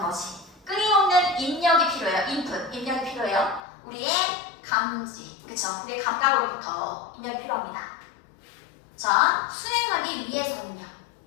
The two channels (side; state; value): right; drops out; at 3.6 s